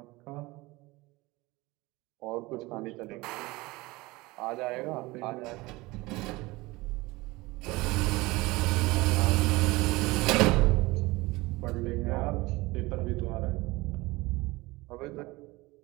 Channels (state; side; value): quieter; left; 21.7 dB